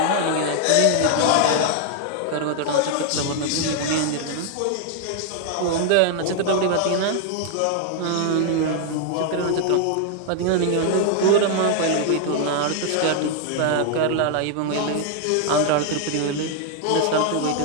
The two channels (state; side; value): different; both; correlation 0.00